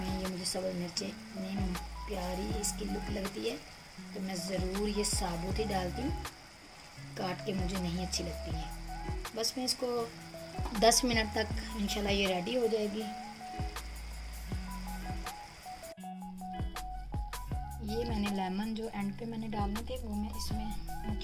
ये मुझे सब्ज़ मिर्चें इतनी प्यारी इसकी लुक लगती है तो मैं ज़रूर ये साबुत ही डालती हूँ, काट के मुझे नहीं अच्छी लगती हैं। बस मैं इसको 10 मिनट तक इंशाल्लाह ये रेडी हो जाएगी। ये मैंने लेमन जो एंड पे मैंने डालने थे वो मैं इसमें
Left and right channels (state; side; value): identical; both; correlation 1.00